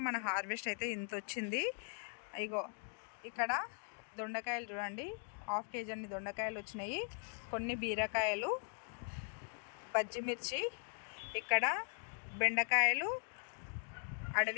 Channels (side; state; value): right; silent; 51 dB below the other